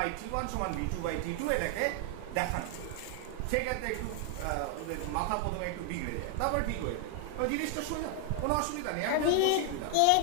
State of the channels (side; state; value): both; different; correlation 0.00